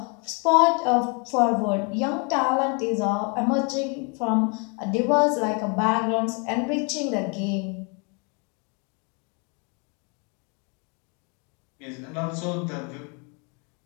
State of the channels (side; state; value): right; quieter; 33.8 dB